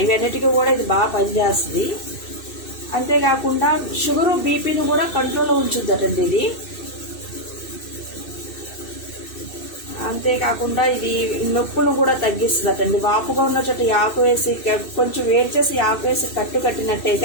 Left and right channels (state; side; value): late; right; 2.6 ms